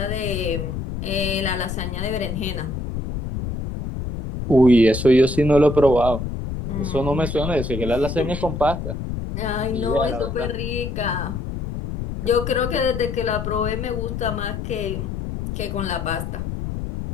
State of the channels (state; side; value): noise; left; rumble, 5 dB below the sound